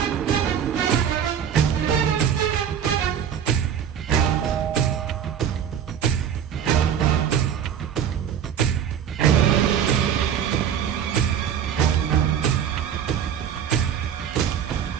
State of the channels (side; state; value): left; quieter; 8.8 dB